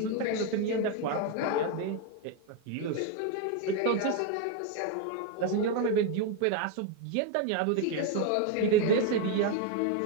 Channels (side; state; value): both; different; correlation 0.02